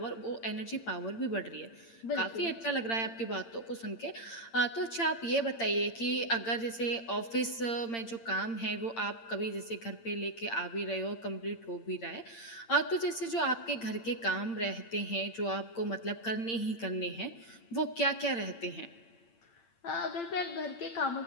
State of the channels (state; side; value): late; right; 8.8 ms